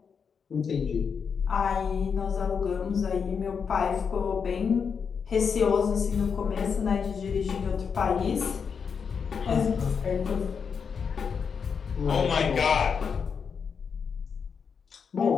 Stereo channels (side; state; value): right; quieter; 6.3 dB